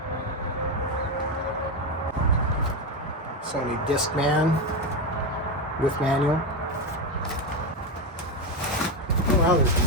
Sony Discman with manual. Oh wow, there's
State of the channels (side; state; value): both; normal; correlation 0.12